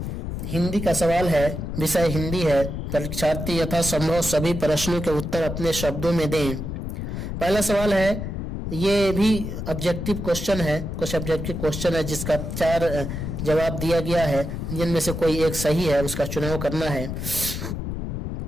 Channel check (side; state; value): left; noise; rumble, 5 dB below the sound